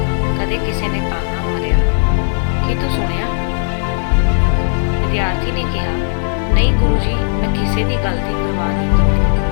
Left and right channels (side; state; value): right; silent; 56 dB below the other